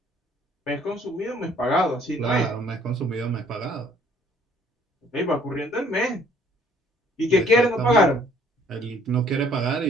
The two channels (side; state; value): both; normal; correlation 0.60